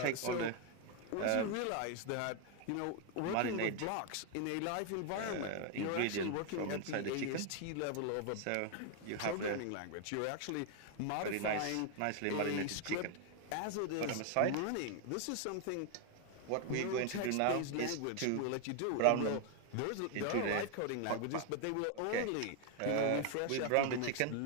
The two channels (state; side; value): different; both; correlation 0.00